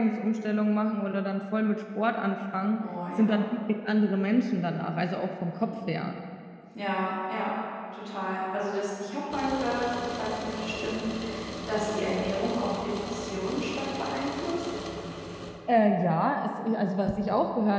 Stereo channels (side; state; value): both; identical; correlation 1.00